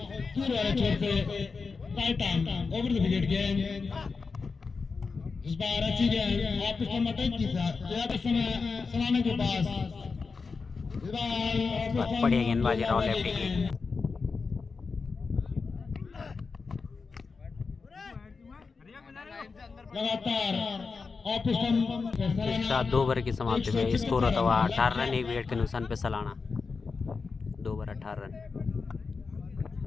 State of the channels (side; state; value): right; quieter; 4.7 dB